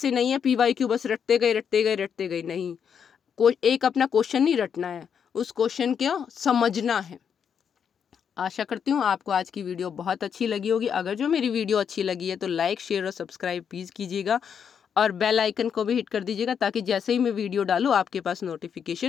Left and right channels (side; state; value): right; quieter; 7.5 dB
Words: नहीं है PYQ बस रटते गए नहीं, एक अपना क्वेश्चन नहीं रटना है, उस क्वेश्चन को समझना है। आशा करती हूँ आपको आज की वीडियो बहुत अच्छी लगी होगी। अगर जो मेरी वीडियो अच्छी लगी है तो लाइक शेयर और सब्सक्राइब प्लीज़ कीजिएगा और बेल आइकन को भी हिट कर दीजिएगा ताकि जैसे ही मैं वीडियो डालूँ आपके पास